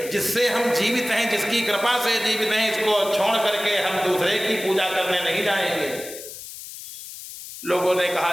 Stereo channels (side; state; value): left; noise; hiss, 12 dB below the sound